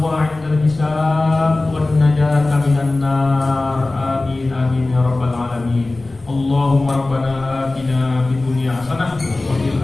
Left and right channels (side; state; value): right; quieter; 3.0 dB